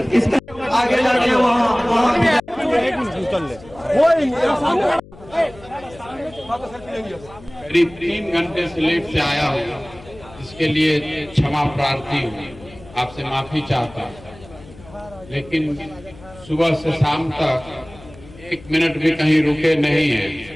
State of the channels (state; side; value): noise; left; hum, 20 dB below the sound